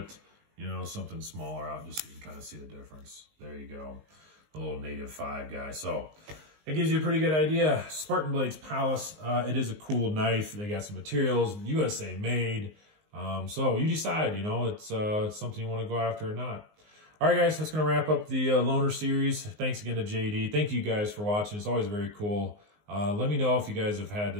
something smaller out just so you can kind of see the difference. There you go. A little native 5 guy. So it gives you a pretty good idea. Spartan Blades Pallas. It is a cool knife. They got some materials, USA made. So you decide, it's something you want to go after or not. All right, guys, that's going to wrap up the loaner series. Thanks again to JD. Thank you guys for watching. It's always very cool. Let me know if you guys have had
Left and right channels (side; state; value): left; late; 19 ms